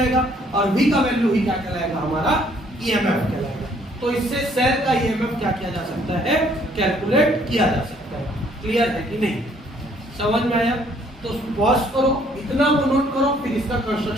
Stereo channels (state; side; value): normal; both; correlation 0.63